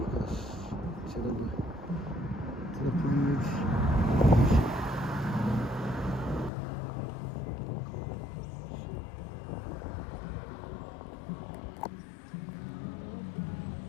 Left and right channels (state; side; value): drops out; right; at 6.5 s